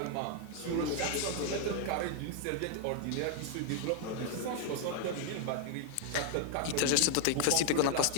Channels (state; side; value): different; both; correlation 0.00